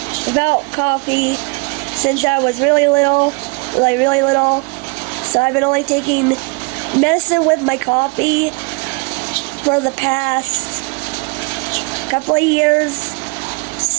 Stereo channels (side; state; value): left; quieter; 31.3 dB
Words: coffee since I was really little. So I've been only taking medicine with my coffee for the past couple of years.